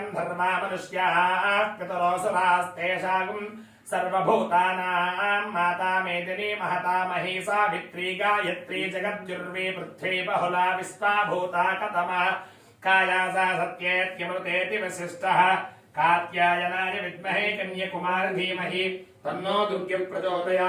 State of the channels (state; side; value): identical; both; correlation 1.00